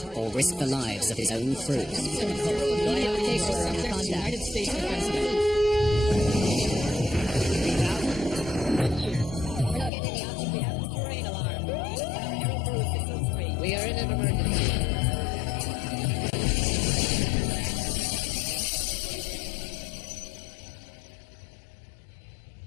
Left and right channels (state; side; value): drops out; right; at 9.9 s